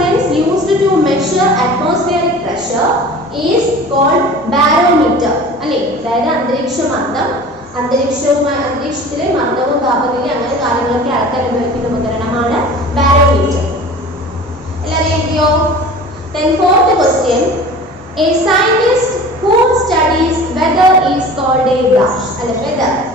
used to measure atmospheric pressure is called barometer. അല്ലേ, അതായത് അന്തരീക്ഷമർദ്ദം, അന്തരീക്ഷത്തിലെ മർദ്ദവും താപനിലയും അങ്ങനെ കാര്യങ്ങളൊക്കെ അളക്കാൻ ഉപയോഗിക്കുന്ന ഉപകരണമാണ് ബാരോമീറ്റർ. എല്ലാവരും എഴുതിയോ? Then fourth question, a scientist who studies weather is called a dash. അല്ലെ, weather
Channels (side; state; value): both; normal; correlation 0.40